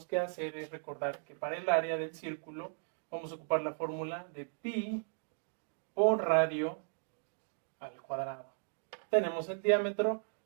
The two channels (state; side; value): silent; left; digital silence